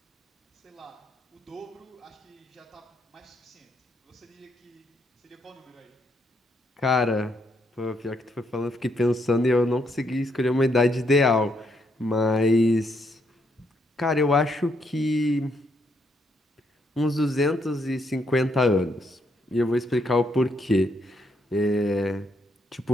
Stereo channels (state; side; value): normal; both; correlation 0.75